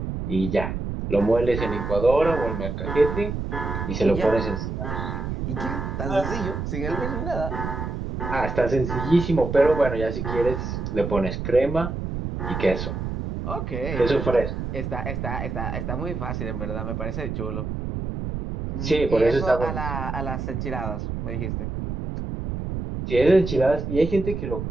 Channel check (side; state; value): right; noise; rumble, 4 dB below the sound